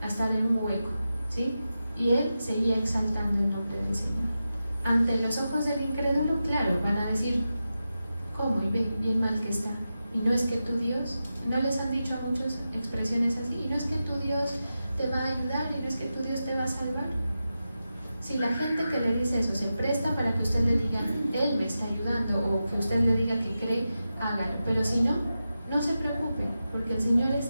a estar en un hueco, ¿sí? Y él seguía exaltando el nombre del Señor. Ante los ojos del incrédulo, claro, van a decir, ¿cómo? Y ve, bien mal que está. Y no es que tu Dios, no les han dicho a muchos expresiones así, y no es que tu Dios te va a ayudar, y no es que tu Dios te va a salvar. Si la gente que le dice eso se presta para que usted le diga, Él me está ayudando, o que usted le diga que cree, hágalo. Pero si no, no se preocupe, porque el Señor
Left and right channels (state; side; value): inverted; both; correlation -0.91